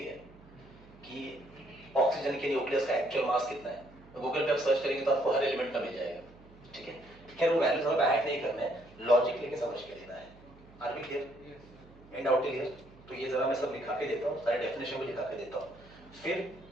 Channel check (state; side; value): noise; right; hum, 23 dB below the sound